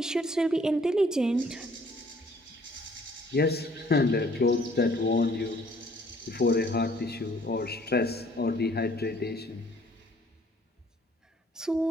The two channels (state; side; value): normal; both; correlation 0.59